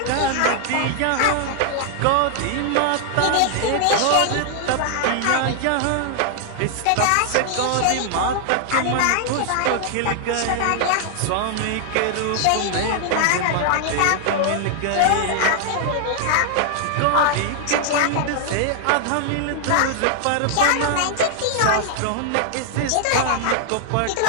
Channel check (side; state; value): both; different; correlation 0.00